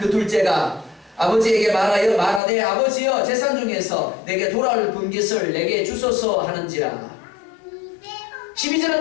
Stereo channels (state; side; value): drops out; right; at 2.4 s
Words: 둘째가 아버지에게 말하되 아버지여 재산 중에서 내게 돌아올 분깃을 내게 주소서 하는지라. 12절은